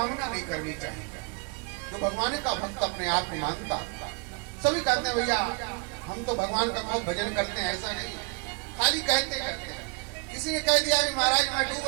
नहीं करनी चाहिए। जो भगवान का भक्त अपने आप को मानता, सभी कहते हैं भैया हम तो भगवान का बहुत भजन करते हैं, ऐसा नहीं, खाली कहते करते हैं। किसी ने कह दिया कि महाराज मैं डूब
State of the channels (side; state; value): left; quieter; 32.0 dB